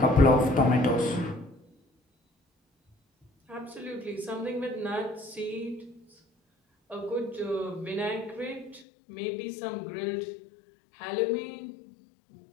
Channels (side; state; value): right; drops out; at 8.8 s